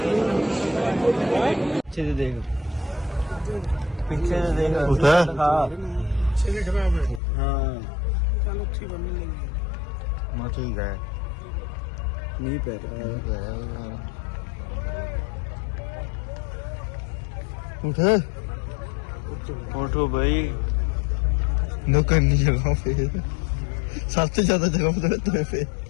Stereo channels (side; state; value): right; drops out; at 7.2 s